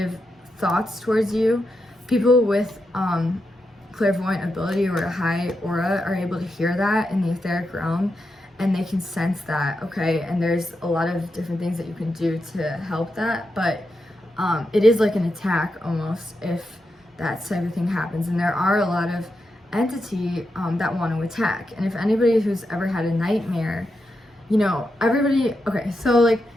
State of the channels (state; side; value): normal; both; correlation 0.86